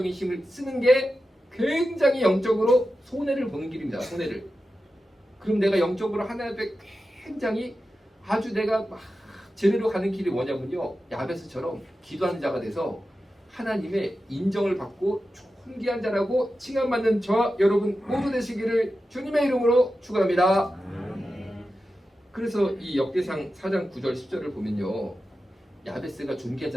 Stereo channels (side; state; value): both; normal; correlation 0.92